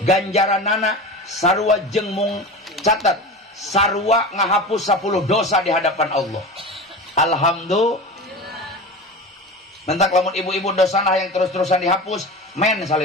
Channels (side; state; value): both; normal; correlation 0.30